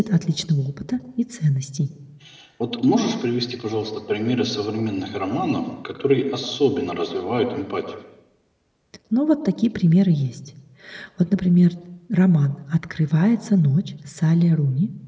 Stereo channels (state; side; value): identical; both; correlation 1.00